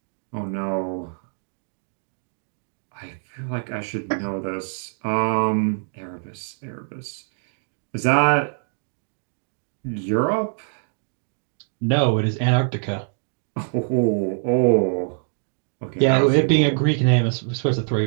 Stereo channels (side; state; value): left; silent; 62 dB below the other